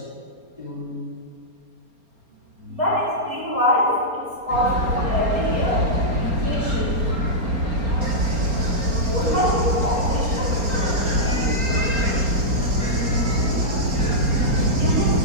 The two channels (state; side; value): late; left; 4.3 ms